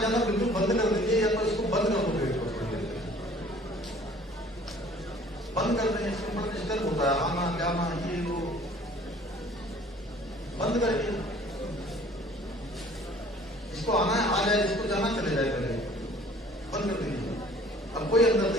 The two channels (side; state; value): both; normal; correlation 0.52